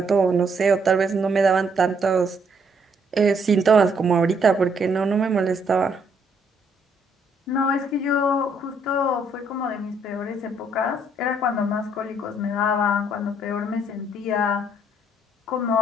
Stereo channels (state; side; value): normal; both; correlation 0.69